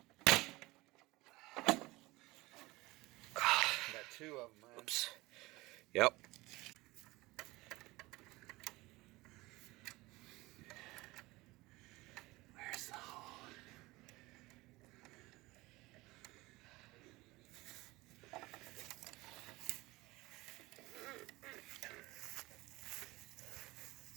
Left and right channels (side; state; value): left; quieter; 21.0 dB